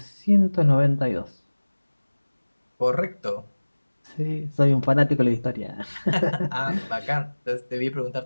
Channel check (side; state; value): both; inverted; correlation -1.00